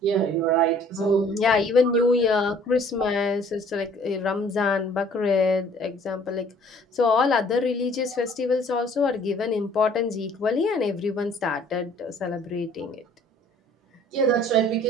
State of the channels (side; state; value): both; normal; correlation 0.55